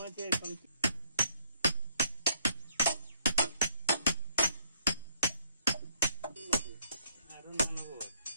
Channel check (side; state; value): both; inverted; correlation -0.67